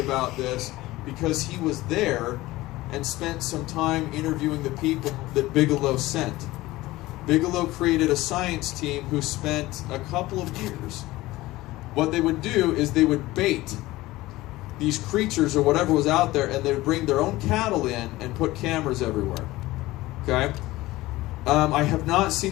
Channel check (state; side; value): quieter; right; 18.3 dB